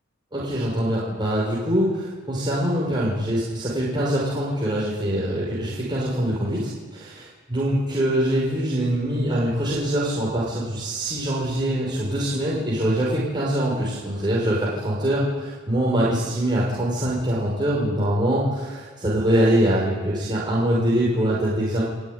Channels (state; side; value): normal; both; correlation 0.67